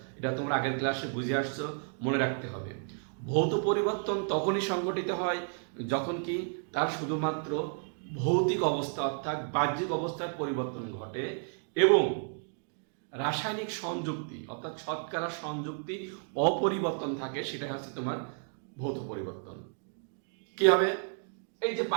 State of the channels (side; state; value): left; silent; 56 dB below the other